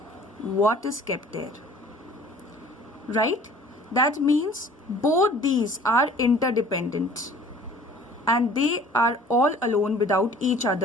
what is kept there? Right? That means both these are interdependent and they are all alone without each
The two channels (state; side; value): normal; both; correlation 0.50